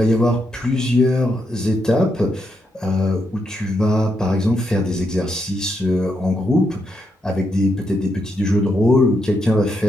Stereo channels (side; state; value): both; normal; correlation 0.80